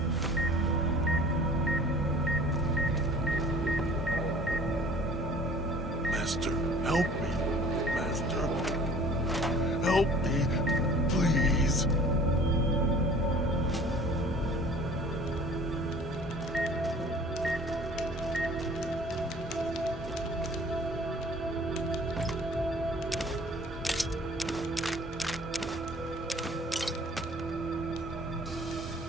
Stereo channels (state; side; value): normal; both; correlation 0.48